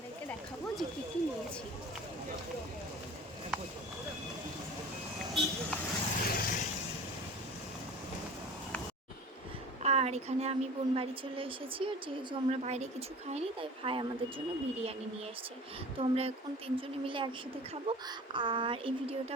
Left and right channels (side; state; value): both; normal; correlation 0.40